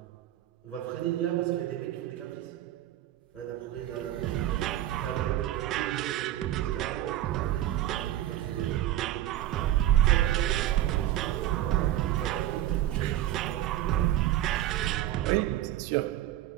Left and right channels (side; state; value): left; quieter; 13.2 dB